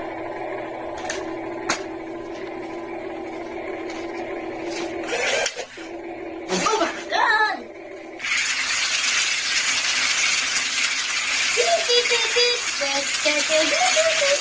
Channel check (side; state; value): both; identical; correlation 1.00